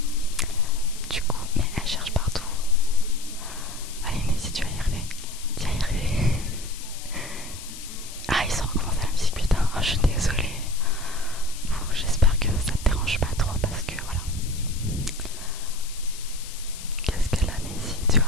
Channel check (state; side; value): noise; left; hiss, 13 dB below the sound